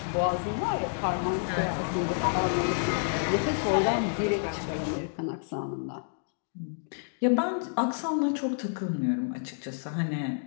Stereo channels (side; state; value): right; silent; digital silence